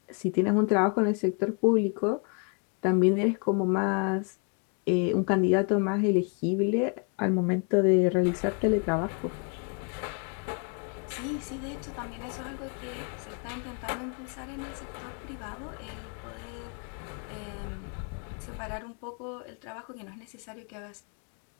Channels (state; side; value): quieter; right; 38.5 dB